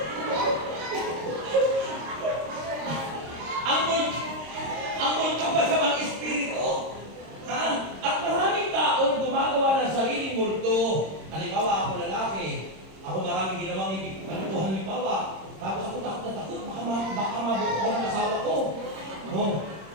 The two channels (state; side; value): late; left; 26 ms